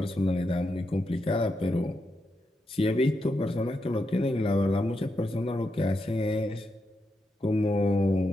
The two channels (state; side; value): normal; both; correlation 0.84